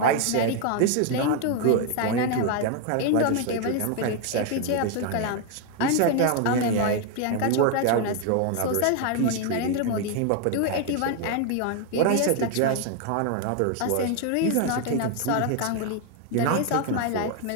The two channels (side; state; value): both; different; correlation 0.01